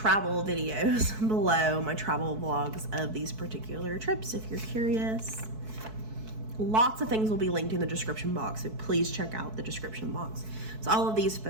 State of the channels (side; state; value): left; late; 4.6 ms